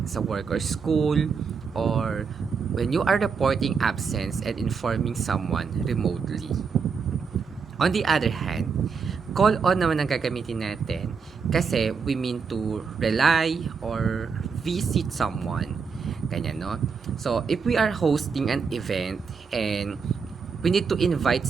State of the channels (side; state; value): left; quieter; 5.7 dB